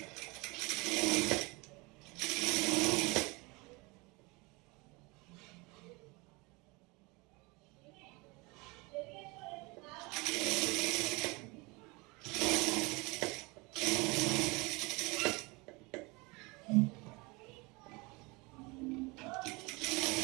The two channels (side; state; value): left; quieter; 26.0 dB